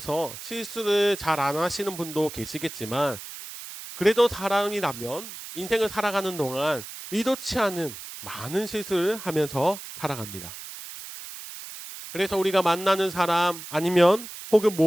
실수를 잘 안 하시는 분도 계시겠지만 그래도 사람이라면 인생을 살아가는 동안 의도치 않은 많은 실수를 하면서 살아갑니다. 그래서 우리가 만나는 사람 아니면 혹은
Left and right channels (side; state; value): right; noise; hiss, 12 dB below the sound